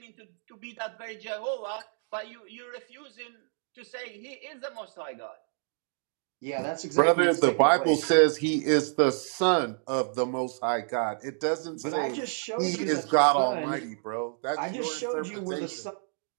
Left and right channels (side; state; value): left; silent; 59 dB below the other